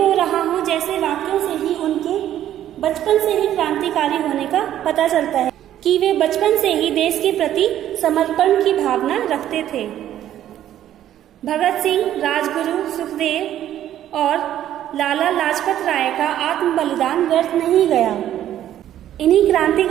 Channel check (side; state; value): left; quieter; 11.7 dB